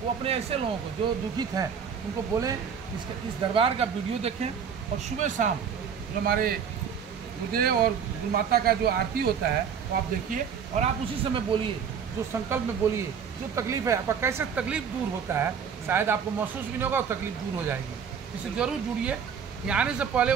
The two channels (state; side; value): quieter; left; 7.1 dB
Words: अपने ऐसे लोगों को जो दुखित हैं उनको बोलें इस दरबार का वीडियो देखें। और सुबह शाम जो हमारे गुरुदेव और गुरु माता का जो आरती होता है वो आप देखिए और आप उसी समय बोलिए, जो संकल्प में बोलिए, जो तकलीफ है आपका कैसे तकलीफ दूर होता है, शायद आपको महसूस भी नहीं होगा और तकलीफ दूर हो जाएगी। इससे जरूर जुड़िए, यहाँ आने से पहले